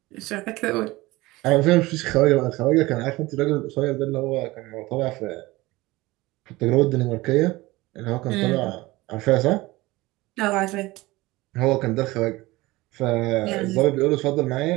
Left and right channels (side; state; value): left; quieter; 20.2 dB